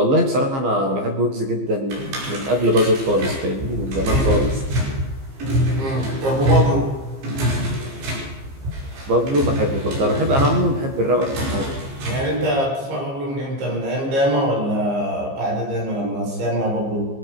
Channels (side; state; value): left; late; 15 ms